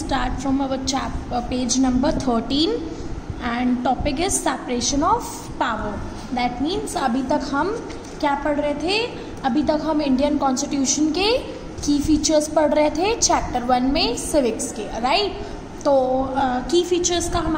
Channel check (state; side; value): identical; both; correlation 1.00